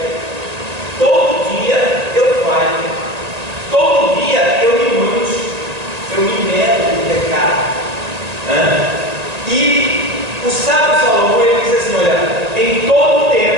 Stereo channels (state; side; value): late; left; 1.9 ms